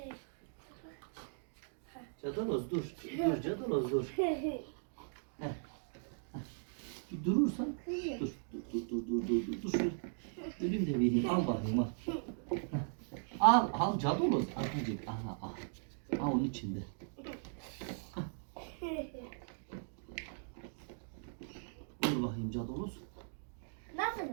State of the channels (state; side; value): silent; left; digital silence